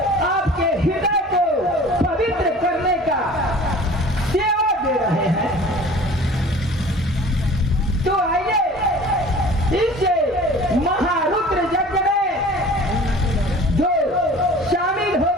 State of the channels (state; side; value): normal; both; correlation 0.44